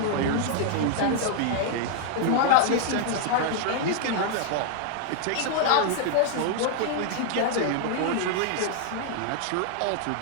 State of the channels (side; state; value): both; different; correlation 0.00